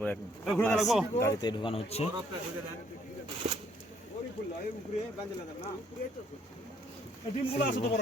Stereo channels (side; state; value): both; normal; correlation 0.67